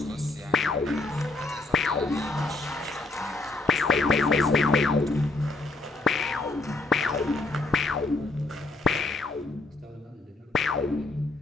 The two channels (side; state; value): right; quieter; 3.3 dB